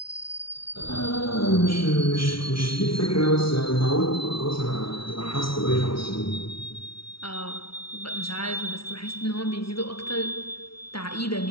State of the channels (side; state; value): right; late; 0.75 ms